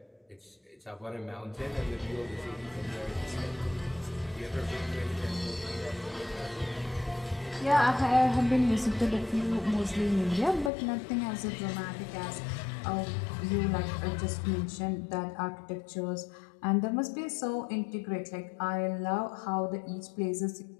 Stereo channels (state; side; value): drops out; right; at 10.7 s